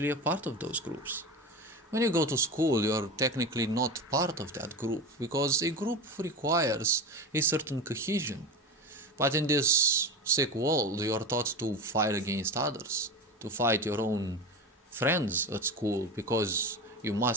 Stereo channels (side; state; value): both; normal; correlation 0.25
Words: a part of those groups. When you go to school, you're technically not part of that group because a group requires a certain cohesion. But in this sick world, you're taught to fight against others, to fight your own friends at school because you